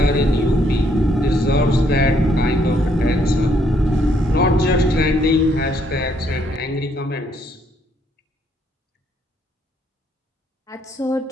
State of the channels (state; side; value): normal; both; correlation 0.70